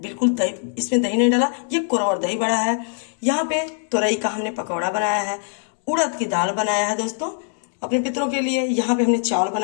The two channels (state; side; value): silent; right; 64 dB below the other